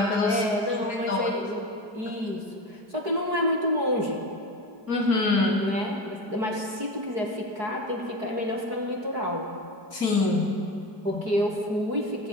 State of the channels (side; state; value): left; late; 4.7 ms